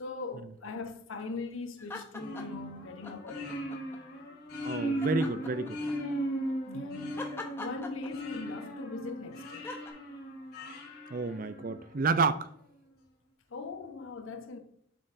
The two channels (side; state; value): both; normal; correlation 0.34